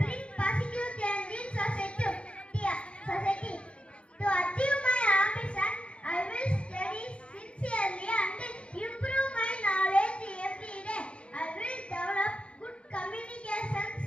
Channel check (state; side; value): late; right; 0.059 ms